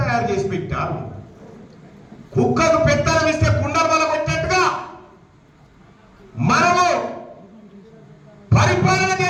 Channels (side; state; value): both; identical; correlation 1.00